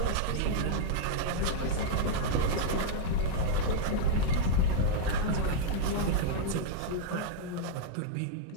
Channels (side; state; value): both; different; correlation -0.02